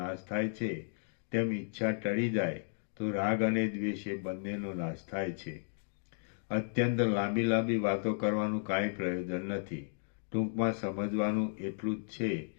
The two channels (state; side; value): silent; right; digital silence